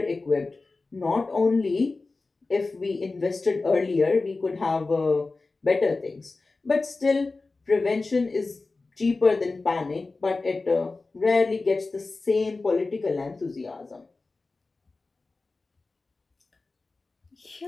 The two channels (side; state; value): right; quieter; 3.6 dB